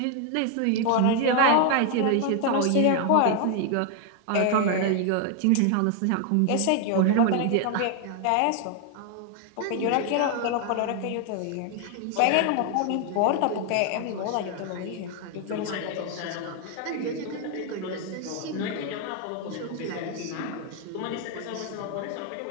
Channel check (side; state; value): both; different; correlation 0.00